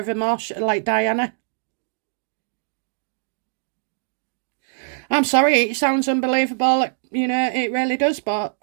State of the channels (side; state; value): left; silent; digital silence